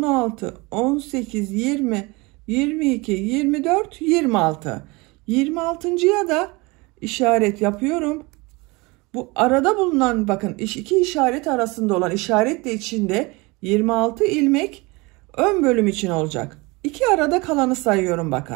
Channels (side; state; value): left; quieter; 25.1 dB